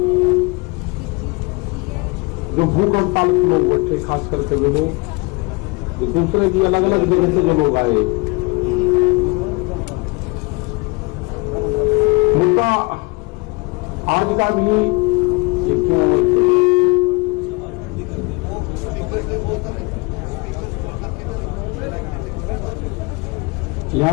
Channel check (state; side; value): quieter; right; 27.3 dB